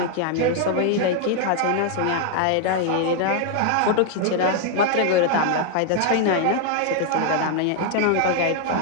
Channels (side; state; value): both; different; correlation 0.01